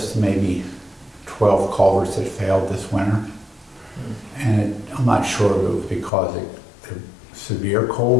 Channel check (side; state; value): right; drops out; at 6.1 s